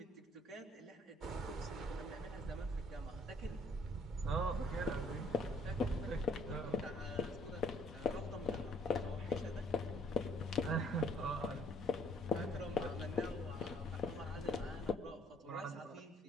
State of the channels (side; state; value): both; normal; correlation 0.62